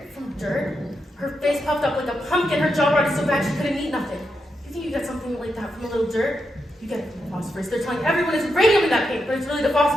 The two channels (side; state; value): both; normal; correlation 0.85